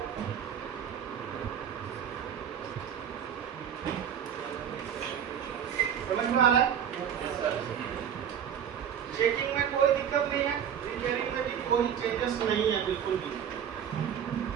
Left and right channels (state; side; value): quieter; left; 8.7 dB